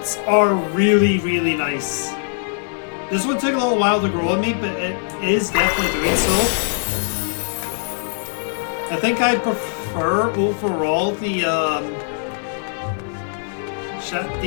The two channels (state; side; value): silent; right; digital silence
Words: are really, really nice. This one took a little while to grow on me, but it is definitely doing so. I think I prefer overall the